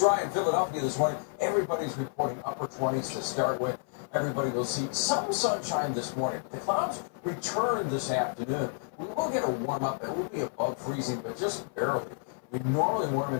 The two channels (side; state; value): right; silent; 56 dB below the other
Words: dry in Philadelphia this morning. Everybody's reporting upper 20s to start with. Everybody will see some sunshine this morning. The clouds return this afternoon. We will get a warm up. It will be above freezing, but just barely. We normally warm